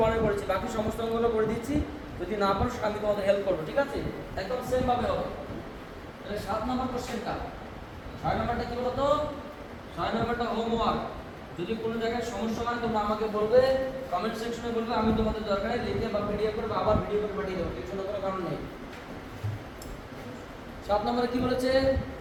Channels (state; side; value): identical; both; correlation 1.00